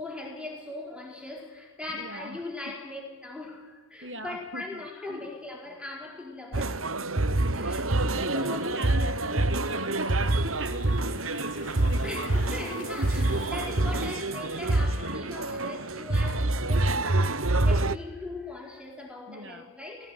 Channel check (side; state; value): both; normal; correlation 0.60